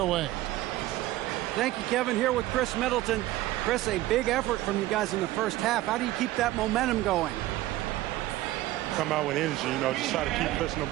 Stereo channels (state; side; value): quieter; left; 16.2 dB